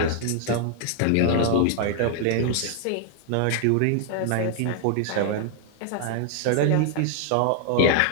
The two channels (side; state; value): both; different; correlation 0.00